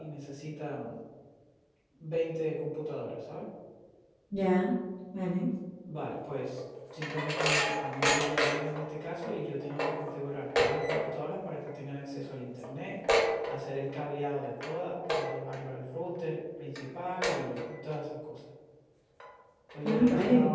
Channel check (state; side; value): identical; both; correlation 1.00